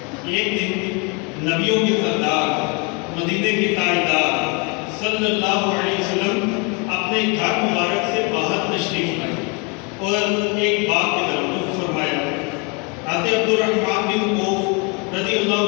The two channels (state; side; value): quieter; right; 31.9 dB